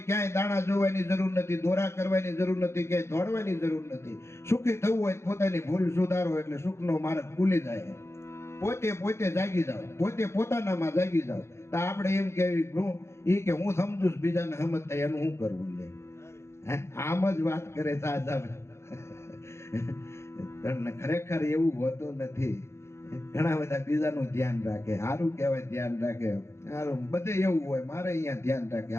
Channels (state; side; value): late; right; 0.13 ms